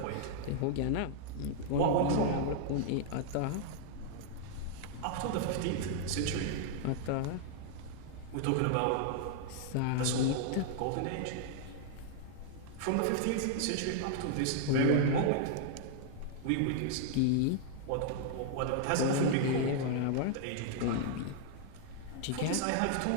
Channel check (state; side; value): different; both; correlation -0.01